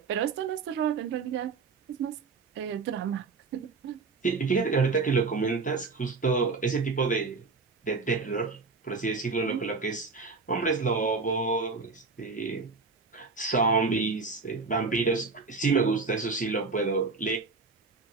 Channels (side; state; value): left; quieter; 4.3 dB